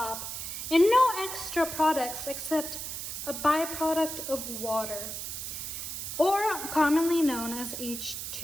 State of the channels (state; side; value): noise; right; hiss, 6 dB below the sound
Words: and no extra products except a byproduct of water, or commonly known as